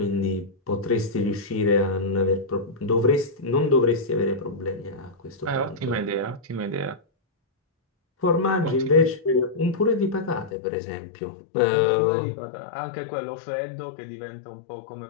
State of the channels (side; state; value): right; drops out; at 10.5 s